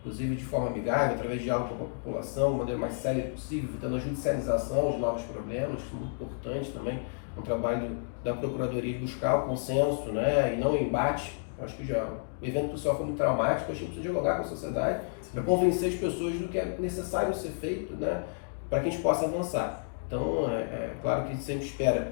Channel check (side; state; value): right; silent; digital silence